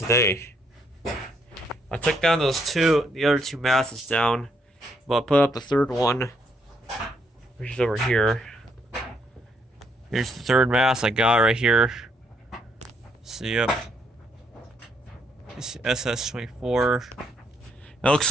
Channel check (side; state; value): both; normal; correlation 0.73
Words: I took down the other two masses down, but I put up the third one, which is over here. Here's the third mass I got right here. So, yep. It's SS24. It looks